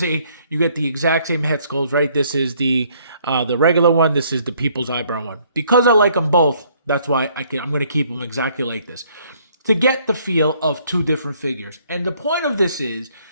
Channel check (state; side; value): inverted; both; correlation -0.64